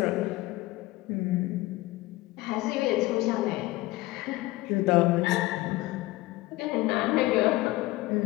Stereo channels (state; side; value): quieter; right; 19.1 dB